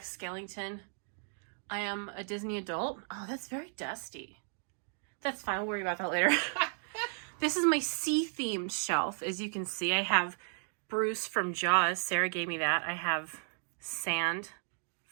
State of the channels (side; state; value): left; silent; 55 dB below the other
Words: Skellington. I am a Disney adult. Oh, that's very dusty. That's fine. We'll worry about that later. This is my sea-themed shelf. As you can see, I have Bruce from Jaws. Sarah gave me that. I have sand